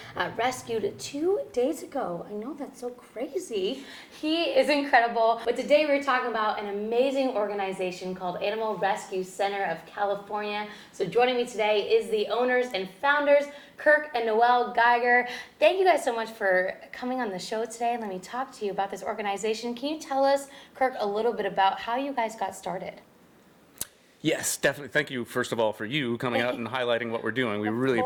rescued 2 days ago. I know, that's so crazy. He is incredible. But today we're talking about an amazing organization called Animal Rescue Center of California. So joining me today is the owners and founders, Kirk and Noelle Geiger. Thank you guys so much for coming on the show today. Let me talk to you about this organization. Can you tell us, Kirk, a little bit about how you guys got started? Yes, definitely. Thank you, first of all, for you coming out and highlighting what we're doing. We really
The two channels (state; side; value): identical; both; correlation 1.00